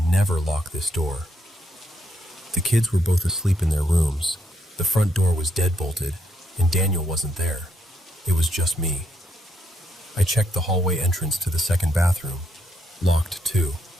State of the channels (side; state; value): both; normal; correlation 0.76